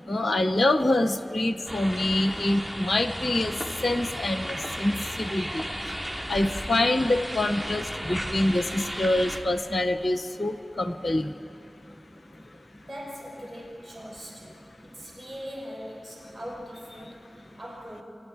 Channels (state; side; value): normal; both; correlation 0.94